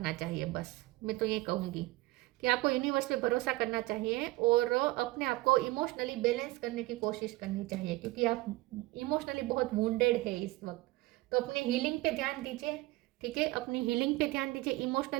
चाहिए। बस मैं तो ये कहूँगी कि आपको यूनिवर्स पे भरोसा करना चाहिए और अपने आप को इमोशनली बैलेंस करने की कोशिश करनी चाहिए, क्योंकि आप इमोशनली बहुत वुंडेड है इस वक्त। तो अपने हीलिंग पे ध्यान दीजिए, ठीक है, अपनी हीलिंग पे ध्यान दीजिए,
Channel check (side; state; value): left; quieter; 20.3 dB